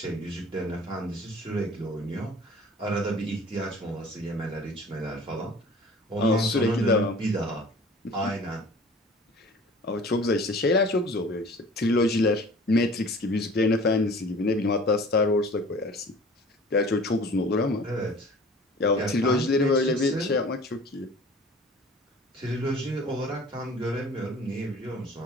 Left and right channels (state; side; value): normal; both; correlation 0.46